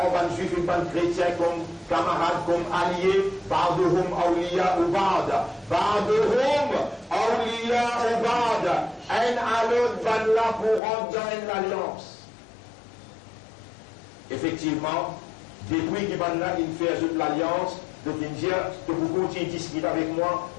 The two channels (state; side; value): drops out; right; at 10.8 s